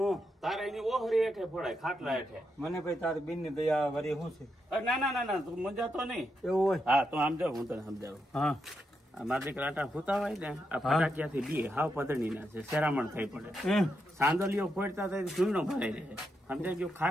તારે એની ઓહરી હેઠે ફોડાય ખાટલા હેઠે મને ભાઈ તારી બેન ની દયા વરી શું છે ના તું મજા તો નહીં એવું હોય હા તું આમ જાવ હું તને સમજાવું હા મારા દીકરા આટા ફૂતા હોય ને આ ફટાકિયાથી બી હાવ પદણી ના છે શેરામણ થઈ પડે એમ સાંદલીઓ ફોડતા થાય ધૂળનો ભરાઈ રહે સમજાય ગયું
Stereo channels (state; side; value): normal; both; correlation 0.83